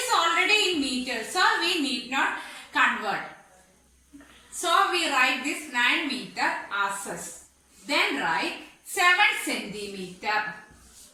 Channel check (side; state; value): both; identical; correlation 1.00